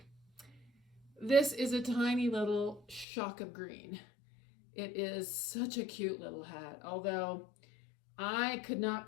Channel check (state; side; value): drops out; right; at 3.1 s